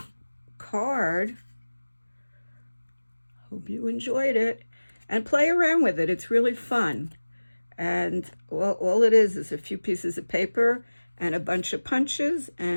card. Hope you enjoyed it, and play around with it. It's really fun. And all it is a few pieces of paper and a bunch of punches,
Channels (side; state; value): both; inverted; correlation -1.00